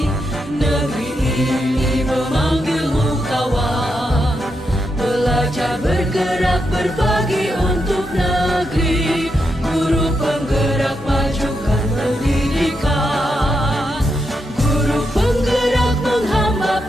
Negeri ini memanggilmu kawan. Belajar, bergerak, berbagi untuk negeri. Guru penggerak, majukan pendidikan. Guru penggerak menghamba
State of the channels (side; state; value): both; normal; correlation 0.83